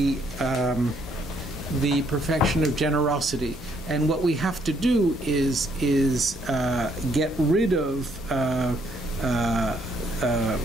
perfection of generosity, and what we have to do is get rid of.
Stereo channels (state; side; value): normal; both; correlation 0.69